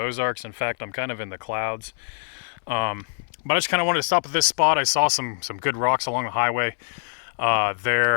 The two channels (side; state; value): right; silent; digital silence